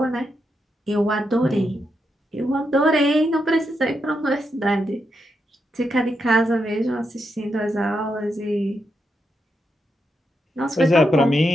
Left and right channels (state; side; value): normal; both; correlation 0.83